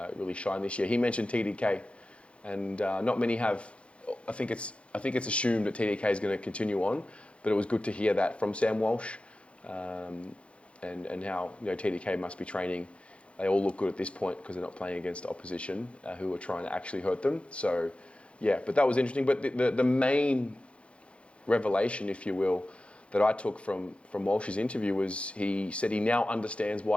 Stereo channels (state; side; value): late; right; 0.060 ms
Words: really shine this year, he mentioned TDK, and not many have. I think it's assumed that TDK is going to continue on, but it was good to hear that from Sam Walsh, and how TDK must be training. They all look good at this point because they're not playing against opposition who are trying to actually hurt them. So yeah, but that was interesting. But the main revelation, if you will, that I took from Walsh's interview was he said he now understands